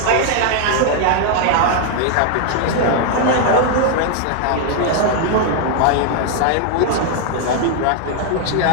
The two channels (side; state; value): both; different; correlation 0.00